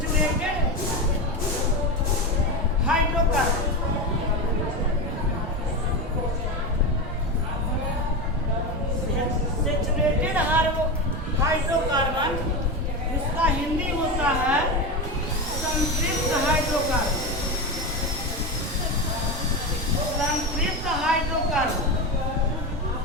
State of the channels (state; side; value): normal; both; correlation 0.18